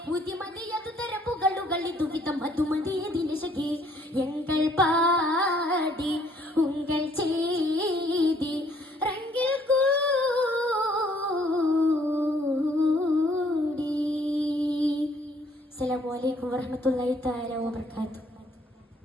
ഉതിമതിയതു തരപ്പുകളുകൾ ഇതുവിധം അതുമതിയതിനശകെ എങ്കൾ പാടി ഉങ്കൾ ചെയ്തി റംഗിൽ കൂടി. അസ്സലാമു അലൈക്കും വറഹ്മത്തുള്ളാഹി തആല വബറകാതുഹു.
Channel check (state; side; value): normal; both; correlation 0.63